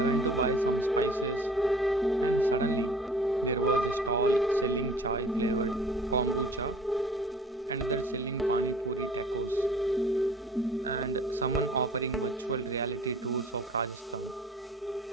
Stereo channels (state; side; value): normal; both; correlation 0.49